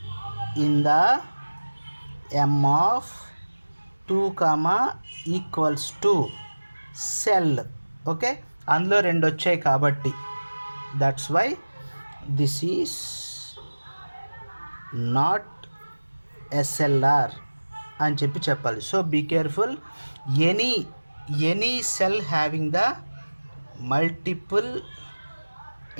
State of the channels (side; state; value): both; inverted; correlation -1.00